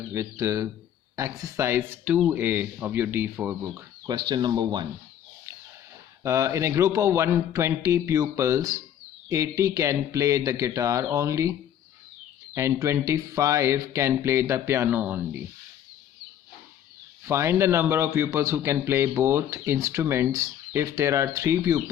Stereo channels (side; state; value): right; quieter; 10.2 dB